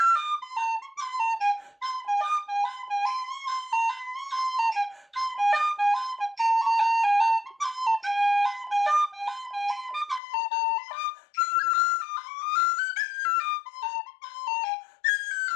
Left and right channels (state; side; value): drops out; right; at 10.2 s